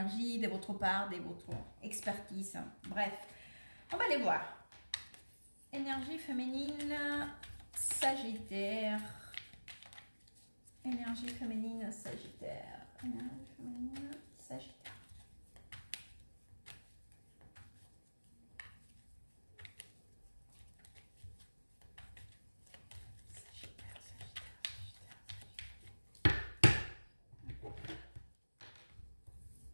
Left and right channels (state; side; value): inverted; both; correlation -1.00